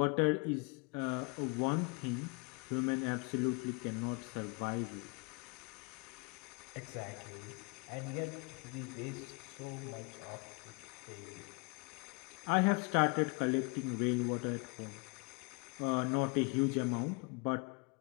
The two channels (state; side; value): quieter; right; 30.5 dB